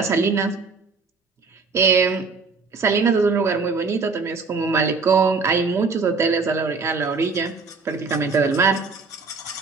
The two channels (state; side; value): quieter; left; 4.5 dB